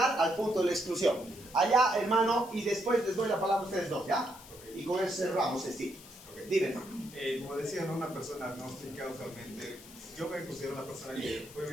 al punto de la exclusión. Allá, hermano, y después les doy la palabra a ustedes dos, ¿ya? Y con eso cerramos este sitio. Dime, hermano. como decía, ¿no? Una persona agnóstica usualmente, yo me considero una persona que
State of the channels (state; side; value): noise; left; hiss, 18 dB below the sound